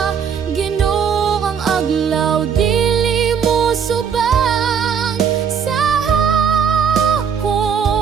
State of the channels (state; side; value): quieter; left; 7.2 dB